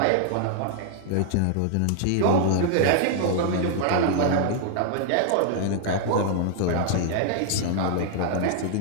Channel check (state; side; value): different; both; correlation 0.00